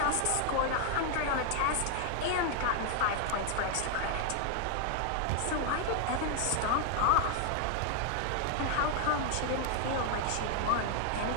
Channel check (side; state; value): both; different; correlation 0.00